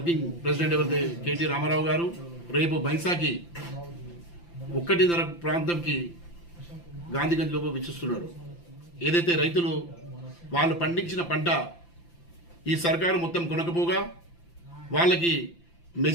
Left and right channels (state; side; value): late; right; 5.9 ms